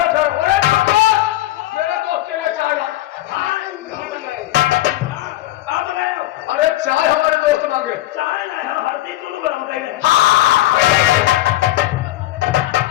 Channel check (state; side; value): quieter; right; 16.0 dB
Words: ठहरो। अरे मेरे दोस्त के लिए चाय ला। अरे चाय हमारे दोस्त मांगे। चाय ना हम हरदी चूरू गरम करी